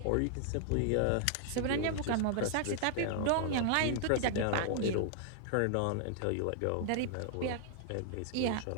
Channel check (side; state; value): both; different; correlation 0.00